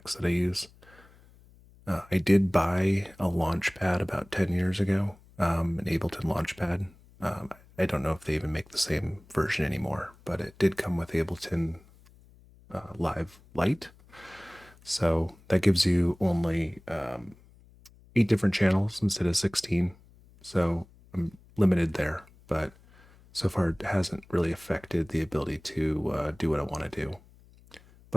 that I use. I did buy a Launchpad about 10 years ago, an Ableton Launchpad. I don't know if they even make the same version anymore, but it did come with Ableton Live Lite. So that gives you only 8 different channels instead of 16. So I'm limited there, but so far it hasn't really affected the ability to do what I want to do.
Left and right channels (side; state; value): left; noise; hum, 26 dB below the sound